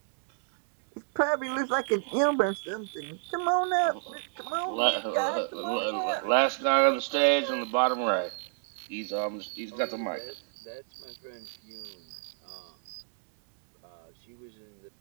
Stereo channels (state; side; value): silent; left; digital silence